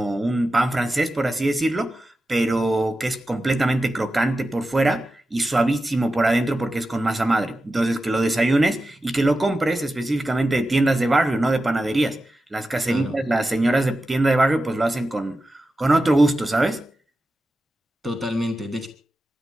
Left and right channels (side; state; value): both; normal; correlation 0.92